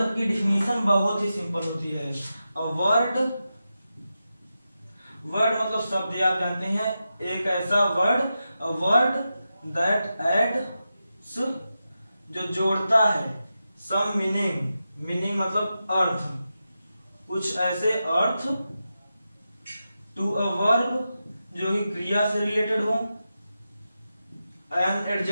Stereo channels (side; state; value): both; inverted; correlation -0.90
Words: की डिफिनीशन बहुत ही सिंपल होती है। अ वर्ड मतलब शब्द, आप जानते हैं, एक ऐसा word, a word that adds, जो जोड़ता है, सम मीनिंग मतलब अर्थ, कुछ ऐसे अर्थ, टू अ वर्ब जो कि क्रिया से रिलेटेड हो, एन